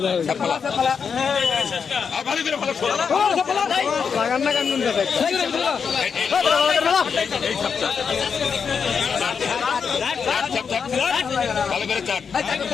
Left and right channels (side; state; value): right; quieter; 6.2 dB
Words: ভালো করে চাট